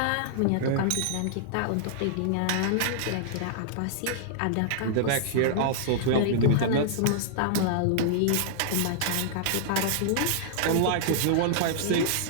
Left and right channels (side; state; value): both; different; correlation -0.01